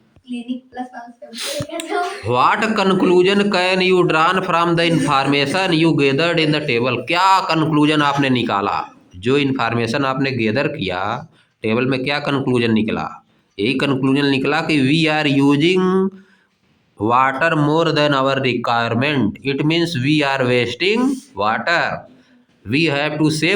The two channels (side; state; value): both; identical; correlation 1.00